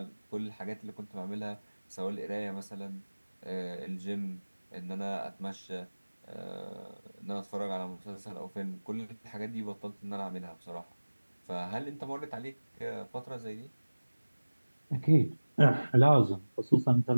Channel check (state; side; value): inverted; both; correlation -1.00